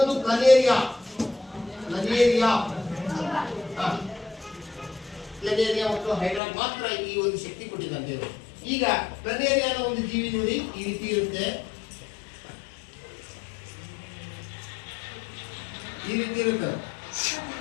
ಪ್ಲನೇರಿಯಾ. ಪ್ಲನೇರಿಯಾ ಮತ್ತು ಹೈಡ್ರಾ ಮಾತ್ರ ಈ ಒಂದು ಶಕ್ತಿ ಕೊಟ್ಟಿದ್ದಾನೆ ದೇವರು. ಈಗ ಪ್ಲನೇರಿಯಾನ ಒಂದು ಜೀವಿ ನೋಡಿ ಈ ರೀತಿ ಇರುತ್ತೆ.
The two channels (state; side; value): drops out; right; at 6.4 s